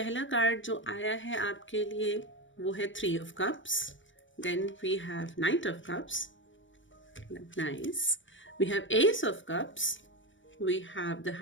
कार्ड जो आया है आपके लिए वो है 3 of cups. Then we have knight of cups, nice. We have ace of cups, we have the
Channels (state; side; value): late; right; 0.56 ms